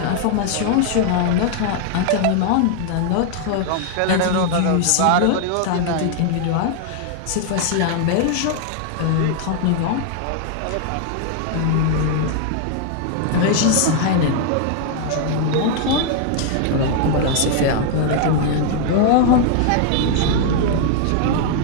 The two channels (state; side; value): different; both; correlation 0.00